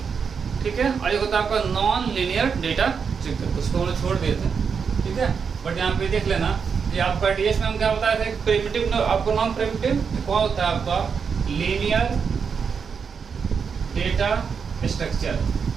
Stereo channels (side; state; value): left; quieter; 6.2 dB